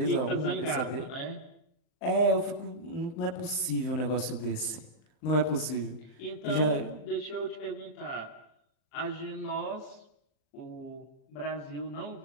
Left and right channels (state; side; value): late; right; 39 ms